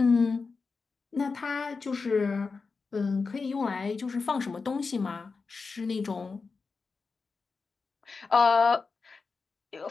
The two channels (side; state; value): right; quieter; 4.5 dB